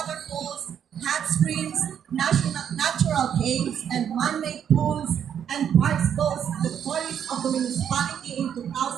hot springs, natural caves, and man-made pools and parks boast the tourists of the municipality in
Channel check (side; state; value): left; quieter; 8.7 dB